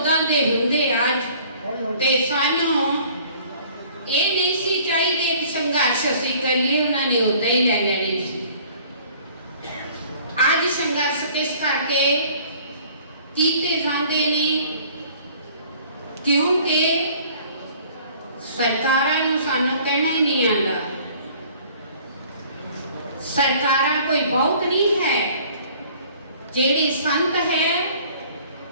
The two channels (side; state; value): both; inverted; correlation -0.53